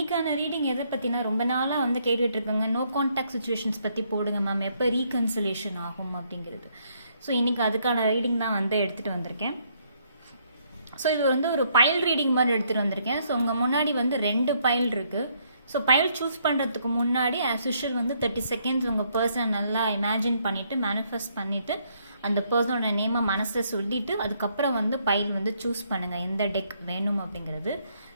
ரீடிங் எதை பற்றினா ரொம்ப நாளாக வந்து கேட்டுட்ருக்கோங்க. நோ கான்டாக்ட் சுச்சுவேஷன்ஸ் பற்றி போடுங்க மேம், எப்போ ரீகன்சிலேஷன் ஆகும் அப்படிங்கிறது. ஸோ இன்றைக்கி அதுக்கான ரீடிங் தான் வந்து எடுத்துகிட்டு வந்திருக்கேன். ஸோ இது வந்து ஒரு பைல் ரீடிங் மாதிரி எடுத்துகிட்டு வந்திருக்கேன். ஸோ உங்கள் முன்னாடி வந்து 2 பைல் இருக்குது. ஸோ பைல் சூஸ் பண்ணுறதுக்கு முன்னாடி ஆஸ் யூஷுவல் வந்து 30 செகண்ட்ஸ் உங்கள் பர்சனை நல்லா இமேஜின் பண்ணிவிட்டு மேனிஃபெஸ்ட் பண்ணிவிட்டு அந்த பர்சனோட நேமை மனசில் சொல்லிவிட்டு அதுக்கப்புறம் வந்து பைல் வந்து சூஸ் பண்ணுங்கள் எந்த டெக் வேணும் அப்படிங்கிறது.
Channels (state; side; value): inverted; both; correlation -0.71